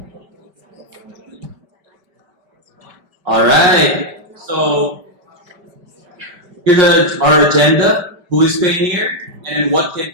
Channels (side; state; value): left; late; 5.1 ms